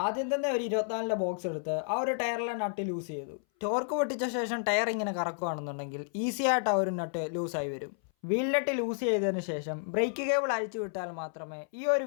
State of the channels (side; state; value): right; silent; 57 dB below the other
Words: ആദ്യം തന്നെ ഒരു 24ന്റെ ബോക്സ് എടുത്ത് ആ ഒരു ടയറിലെ നട്ട് ലൂസ് ചെയ്തു. ടോർക്ക് പൊട്ടിച്ച ശേഷം ടയർ ഇങ്ങനെ കറക്കുകയാണെന്നുണ്ടെങ്കിൽ ഈസി ആയിട്ട് ആ ഒരു നട്ട് ലൂസായി വരും. വീൽ നട്ട് ലൂസ് ചെയ്തതിന് ശേഷം ബ്രേക്ക് കേബിൾ അഴിച്ചു വിട്ടാൽ മാത്രമേ ഈ ഒരു